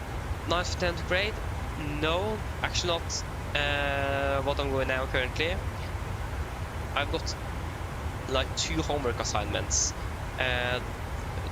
9th, 10th grade? No, actually not what I'm going now currently. I've got like 2 homework assignments. The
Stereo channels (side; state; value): both; identical; correlation 1.00